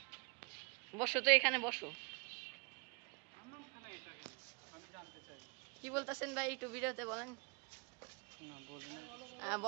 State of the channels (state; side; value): quieter; left; 32.9 dB